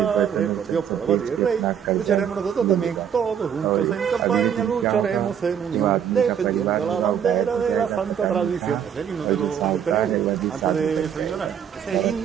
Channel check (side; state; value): left; quieter; 8.5 dB